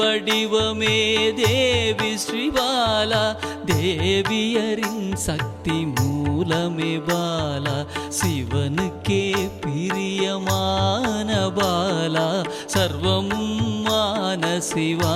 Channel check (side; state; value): both; identical; correlation 1.00